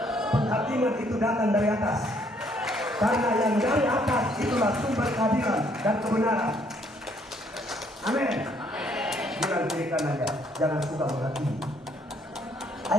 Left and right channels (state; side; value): normal; both; correlation 0.66